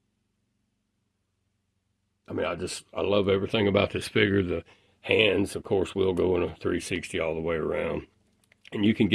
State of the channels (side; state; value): both; identical; correlation 1.00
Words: I mean, I love everything about this figure. The hands, of course, will go in a 360 all the way around. And you can